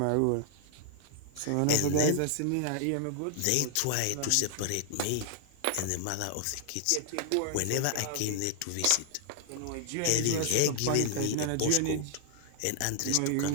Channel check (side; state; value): both; different; correlation 0.00